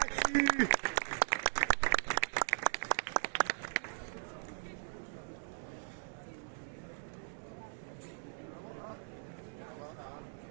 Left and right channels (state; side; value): silent; left; digital silence